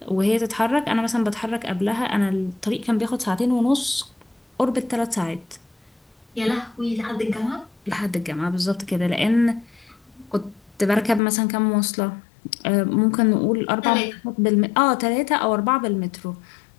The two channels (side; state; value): right; drops out; at 11.2 s